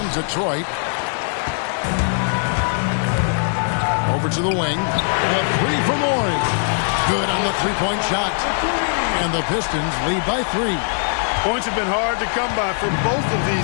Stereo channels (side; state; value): right; silent; 59 dB below the other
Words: Detroit. Over to the wing. A three for Morey. Good on the three-point shot. And the Pistons lead by 3. Points have been hard to come by for both of